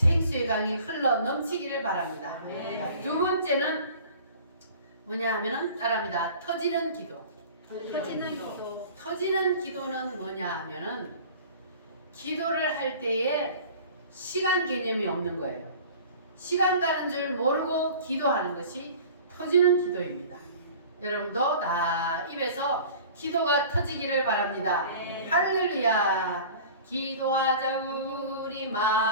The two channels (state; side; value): inverted; both; correlation -0.43